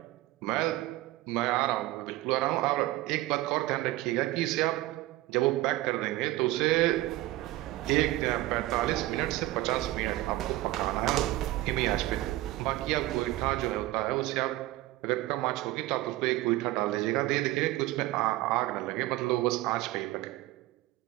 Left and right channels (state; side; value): quieter; left; 17.2 dB